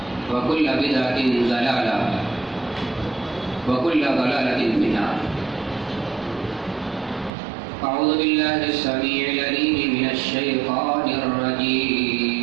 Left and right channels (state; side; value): drops out; left; at 7.3 s